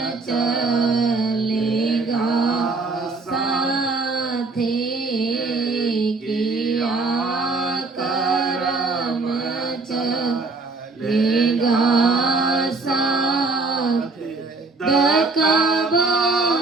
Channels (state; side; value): quieter; left; 3.7 dB